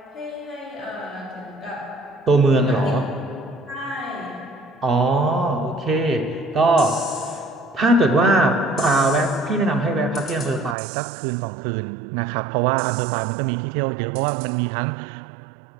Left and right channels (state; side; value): drops out; left; at 10.8 s